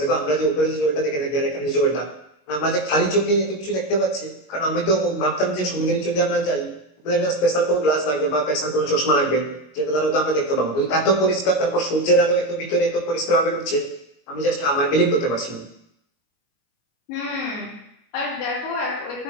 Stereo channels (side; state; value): right; late; 21 ms